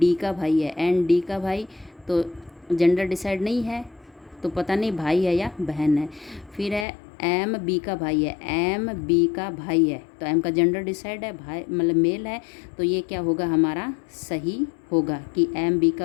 का भाई है, एन डी का भाई तो जेंडर डिसाइड नहीं है, तो पता नहीं भाई है या बहन है। फिर है एम बी का भाई है, एम बी का भाई है, तो एम का जेंडर डिसाइड है, भाई मतलब मेल है, तो ये क्या होगा हमारा सही होगा कि एम बी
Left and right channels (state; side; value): drops out; right; at 6.9 s